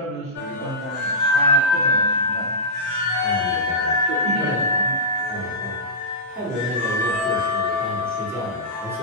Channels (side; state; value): both; normal; correlation -0.14